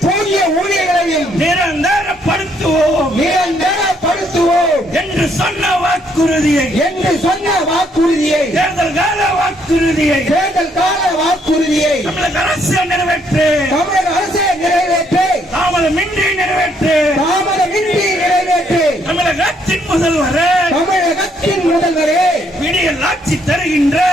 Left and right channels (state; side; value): normal; both; correlation 0.70